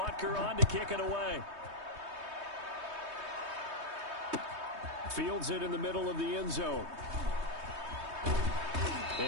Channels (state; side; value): late; left; 3.2 ms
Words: on to kick it away. Fields it in the middle of the end zone.